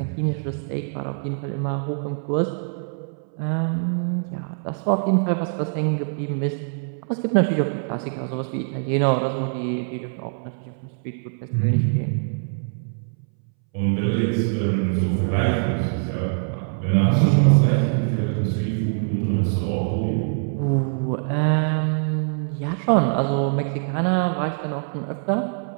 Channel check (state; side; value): silent; left; 63 dB below the other